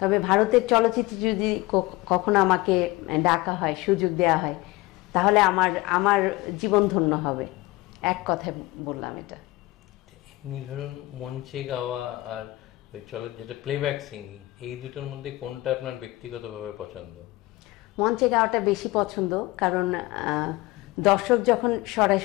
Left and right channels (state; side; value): quieter; right; 20.1 dB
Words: ভারতের চলচ্চিত্রে যদি কখনো আমাকে ডাকা হয়, সুযোগ দেওয়া হয়, তাহলে আমার জীবন ধন্য হবে। এক কথায় বললাম এটা। এমনি ধরুন মঞ্চে গাওয়া আর ওই যেটা প্লেব্যাক সিঙ্গিং, এই দুটোর মধ্যে কোনটা আপনার ব্যক্তিগতভাবে পছন্দ? মঞ্চে গাওয়াটা বেশি পছন্দ, কারণ দর্শক যখন